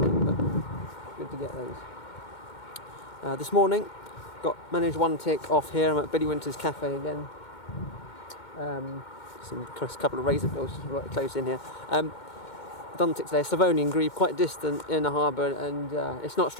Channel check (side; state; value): right; late; 2.2 ms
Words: but good to get those. This morning, managed one tick off here. I'm at Billy Winter's Cafe again. A couple of razor bills just right close in here. Done tick today. Slavonian Grebe, quite distant in the harbour, and it's not